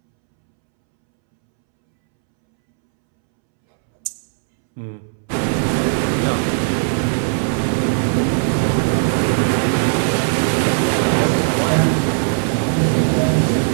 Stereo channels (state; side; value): silent; left; 68 dB below the other